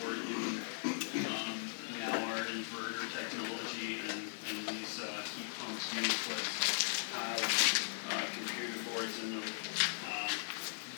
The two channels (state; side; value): silent; right; 52 dB below the other